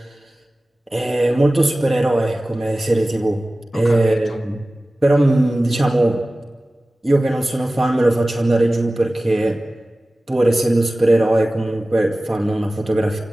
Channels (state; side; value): normal; both; correlation 0.97